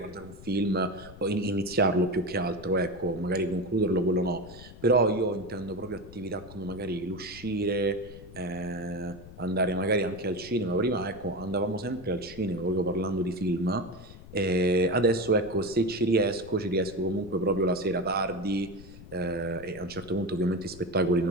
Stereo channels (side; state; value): left; noise; rumble, 17 dB below the sound